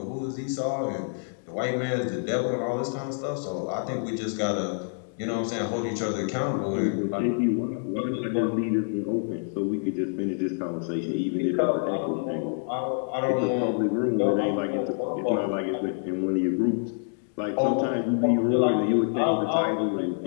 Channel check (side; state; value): right; silent; digital silence